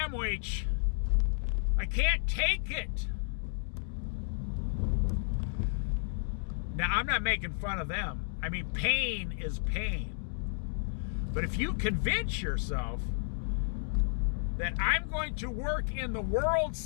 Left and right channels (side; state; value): right; silent; digital silence